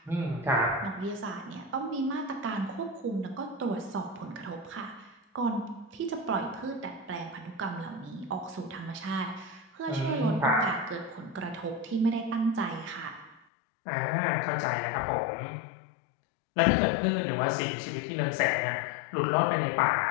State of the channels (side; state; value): right; drops out; at 13.4 s